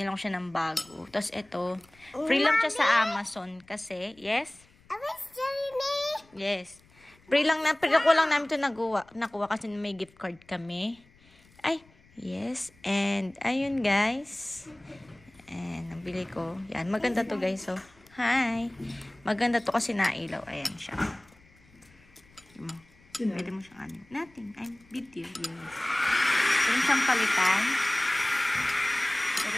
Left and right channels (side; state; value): left; noise; rumble, 29 dB below the sound